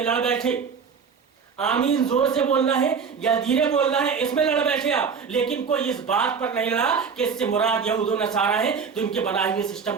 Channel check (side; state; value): left; quieter; 6.0 dB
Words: لڑ بیٹھے، آمین زور سے بولنا ہے یا دھیرے بولنا ہے، اس میں لڑ بیٹھے آپ، لیکن کوئی اس بات پر نہیں لڑا کہ اس سے مراد یہود و نصارہ ہے تو ان کے بنائے ہوئے سسٹم